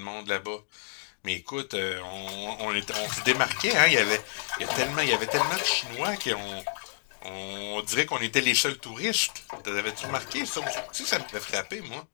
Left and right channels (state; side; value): silent; right; digital silence